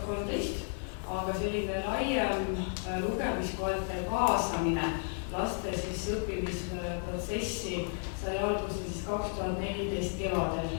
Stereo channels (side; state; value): right; silent; 56 dB below the other